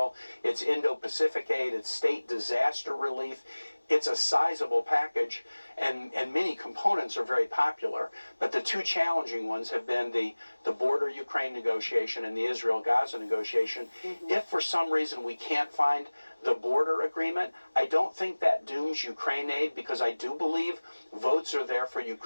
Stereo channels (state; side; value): inverted; both; correlation -1.00